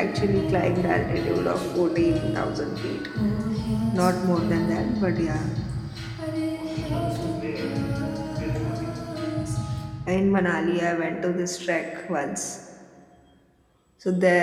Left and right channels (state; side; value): identical; both; correlation 1.00